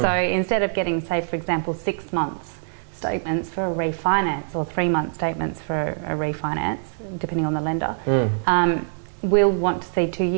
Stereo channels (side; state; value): left; silent; 62 dB below the other